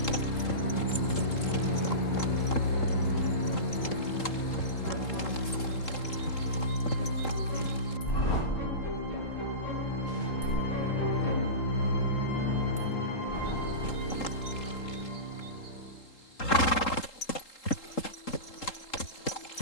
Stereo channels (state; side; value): late; right; 3.8 ms